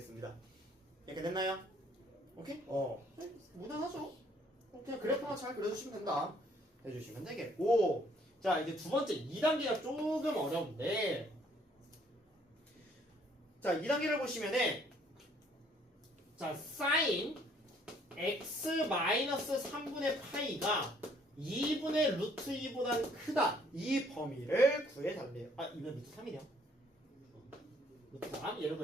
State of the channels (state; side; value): normal; both; correlation 0.63